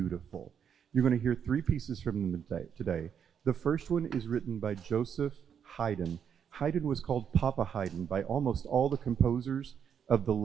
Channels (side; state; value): left; quieter; 7.9 dB